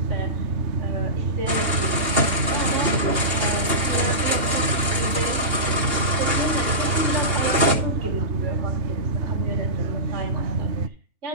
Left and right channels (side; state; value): left; late; 2.8 ms